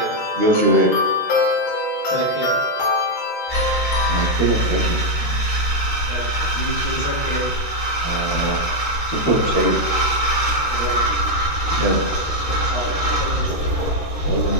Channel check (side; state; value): right; late; 13 ms